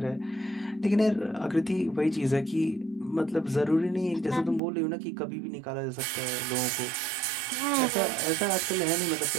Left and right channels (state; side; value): drops out; left; at 4.6 s